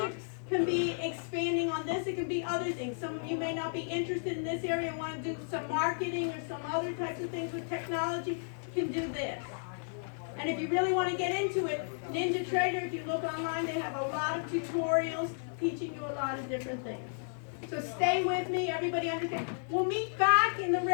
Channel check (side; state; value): right; silent; digital silence